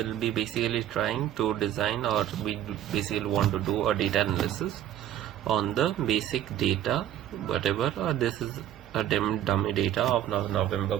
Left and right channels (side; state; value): left; quieter; 11.6 dB